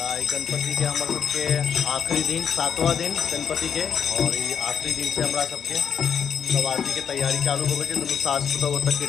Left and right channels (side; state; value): right; quieter; 7.5 dB